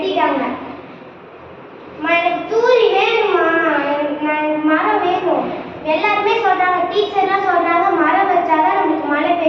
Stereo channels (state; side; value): identical; both; correlation 1.00